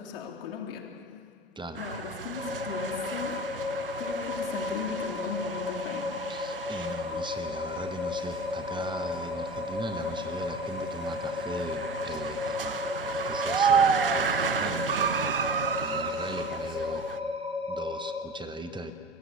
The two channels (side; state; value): both; normal; correlation 0.36